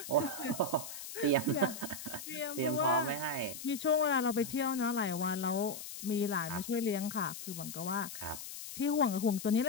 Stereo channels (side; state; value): left; noise; hiss, 10 dB below the sound